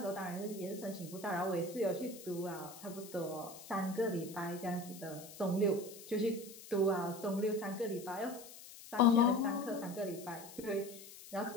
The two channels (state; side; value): noise; left; hiss, 16 dB below the sound